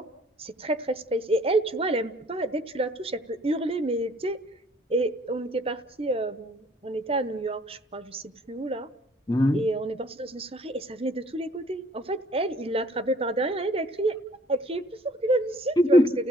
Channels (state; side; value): normal; both; correlation 0.57